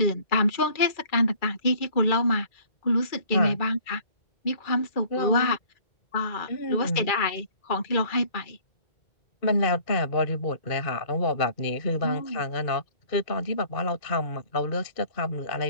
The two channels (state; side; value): late; right; 2.3 ms